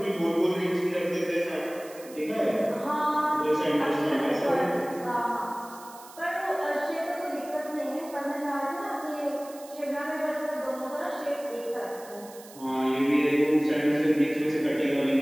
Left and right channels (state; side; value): noise; right; hiss, 19 dB below the sound